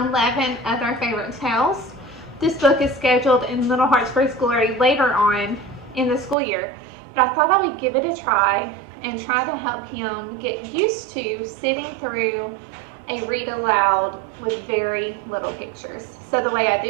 Other Favorite Tales. This book is scheduled in Little Hearts for His Glory later on in the school year, but I thought I would give it a try and try to help him get used to sitting through a read aloud with very little pictures. So the way I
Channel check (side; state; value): left; drops out; at 6.4 s